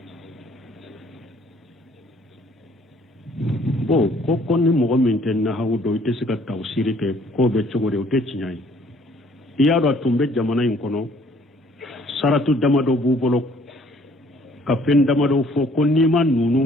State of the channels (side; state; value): both; normal; correlation 0.60